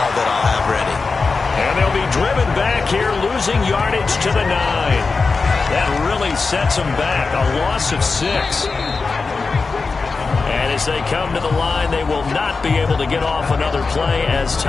that I'll have ready. And they'll be driven back here, losing yardage to the 9. That really sets them back. A loss of 6. And as they come to the line, they will not be able to get off another play as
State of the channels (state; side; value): quieter; right; 4.3 dB